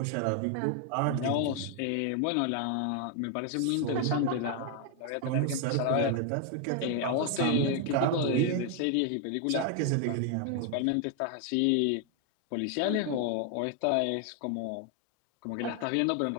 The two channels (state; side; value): different; both; correlation 0.00